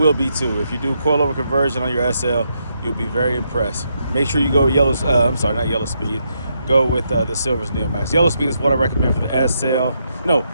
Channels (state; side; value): inverted; both; correlation -0.79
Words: be too. If you do coilover conversion on your SL, you'll be very impressed. Make sure you go not yellow speed. Go with the Silvers Neomax. Yellow speed is what I recommend for the SL. No,